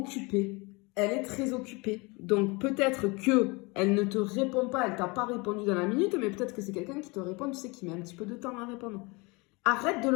Elle est très occupée. Donc, peut-être que elle ne te répond pas, elle t'a pas répondu dans la minute, mais peut-être que c'est quelqu'un qui te répond, tu sais, qui met un petit peu de temps à répondre. Arrête de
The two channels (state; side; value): quieter; right; 26.9 dB